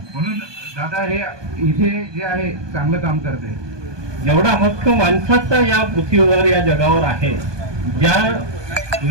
म्हणून दादा हे इथे जे आहे चांगलं काम करते। एवढा हक्क माणसाचा या पृथ्वीवर या जगावर आहे, ज्या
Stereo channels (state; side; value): late; left; 1.2 ms